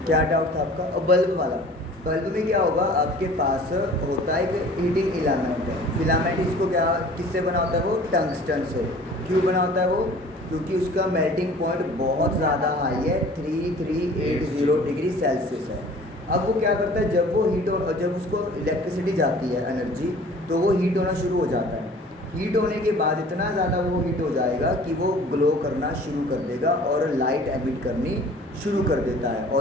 क्या डाउट था आपका? और बल्ब वाला, बल्ब में क्या होगा, आपके पास होता है एक हीटिंग इलामेंट है, फिलामेंट इसको क्या किससे बना होता है, वो टंगस्टन से। क्यों बना होता है वो? क्योंकि उसका मेल्टिंग पॉइंट बहुत ज़्यादा हाई है, 3380 डिग्री सेल्सियस है। अब वो क्या करता है, जब वो हीट हो, जब उसको इलेक्ट्रिसिटी जाती है एनर्जी, तो वो हीट होना शुरू हो जाता है। हीट होने के बाद इतना ज़्यादा वो हीट हो जाएगा कि वो ग्लो करना शुरू कर देगा और लाइट एमिट करनी शुरू कर देता है,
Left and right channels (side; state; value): both; normal; correlation 0.48